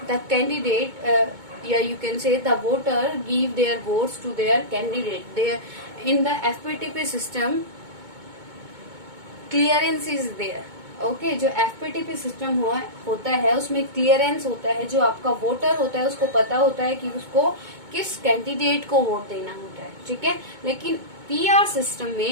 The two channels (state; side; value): late; left; 2.2 ms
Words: the candidate, you can say the voter give their votes to their candidate. In the FPTP system, clearance is there. Okay, जो FPTP system होता है उसमें क्लियरेंस होता है. जो आपका वोटर होता है उसको पता होता है कि उसको किस कैंडिडेट को वोट देना होता है. ठीक है. लेकिन PR सिस्टम